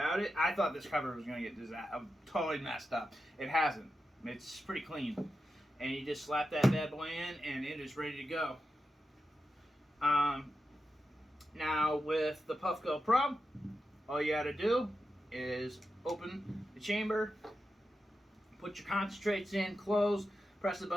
it. I thought this cover was going to get totally messed up. It hasn't. It's pretty clean. And you just slap that bad boy in, and it is ready to go. Now, with the Puffco Pro, all you got to do is open the chamber, put your concentrates in, close, press the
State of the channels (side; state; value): both; normal; correlation 0.90